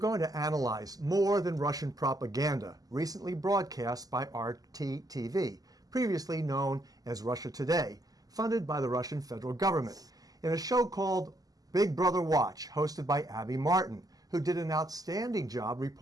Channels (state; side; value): late; left; 0.18 ms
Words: to analyze more than Russian propaganda recently broadcast by RT-TV, previously known as Russia Today, funded by the Russian federal government, in a show called Big Brother Watch, hosted by Abby Martin, who did an outstanding job